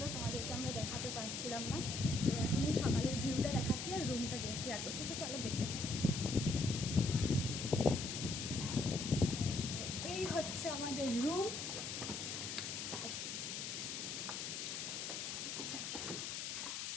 তোমাদেরকে আমরা দেখাতে পারছিলাম না। তো এখন এই সকালের ভিউটা দেখাচ্ছি আর রুমটা শেয়ার করছি, তো চলো দেখতে থাকি। এই হচ্ছে আমাদের রুম। আচ্ছা,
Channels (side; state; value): left; noise; hiss, 4 dB below the sound